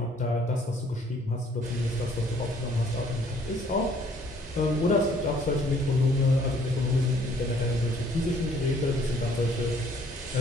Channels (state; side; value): normal; both; correlation 0.61